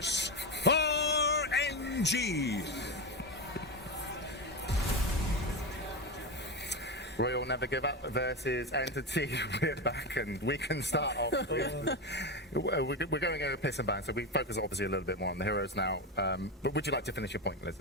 RNG. Royal Never Give Up versus Entity. We're back and we can start off with... We're going over piss and ban, so we focus obviously a little bit more on the heroes now. But would you like to finish your point,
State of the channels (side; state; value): both; normal; correlation 0.15